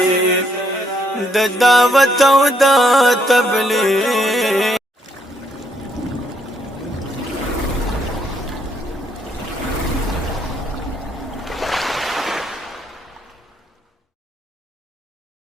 د دعوت او د تبلیغ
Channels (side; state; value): both; normal; correlation 0.72